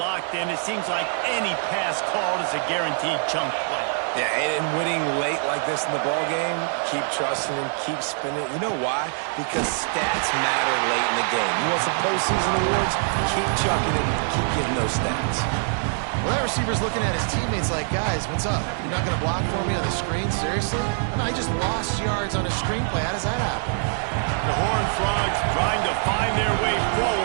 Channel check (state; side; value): silent; left; 62 dB below the other